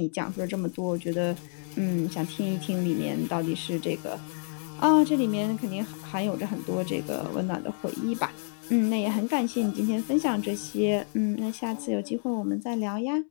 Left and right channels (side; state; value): right; silent; 59 dB below the other